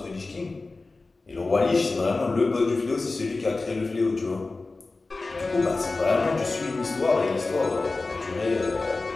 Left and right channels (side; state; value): right; quieter; 3.5 dB